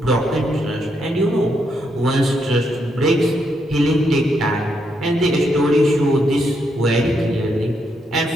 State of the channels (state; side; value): normal; both; correlation 0.78